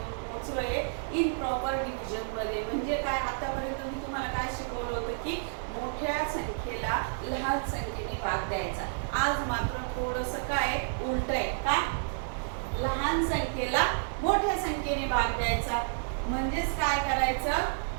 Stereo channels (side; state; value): left; silent; digital silence